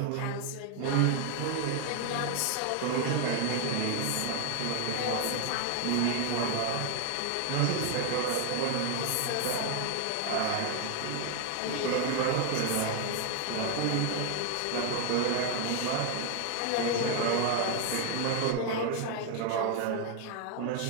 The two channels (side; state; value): both; different; correlation 0.01